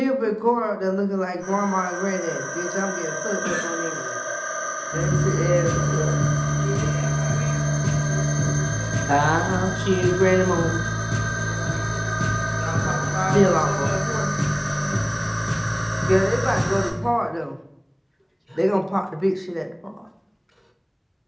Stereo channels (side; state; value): both; identical; correlation 1.00